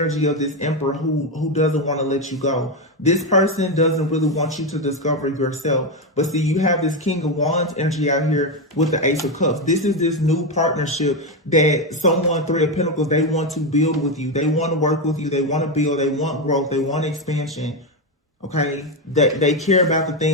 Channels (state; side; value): normal; both; correlation 0.10